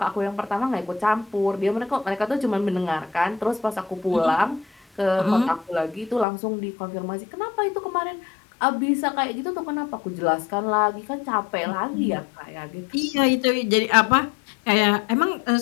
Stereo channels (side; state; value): right; drops out; at 6.2 s